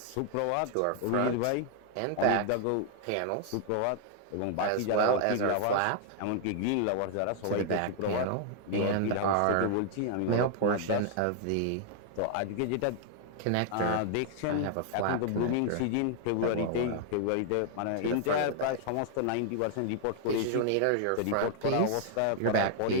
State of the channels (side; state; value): both; different; correlation 0.00